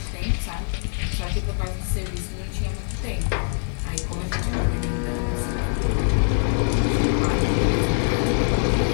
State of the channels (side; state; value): right; silent; digital silence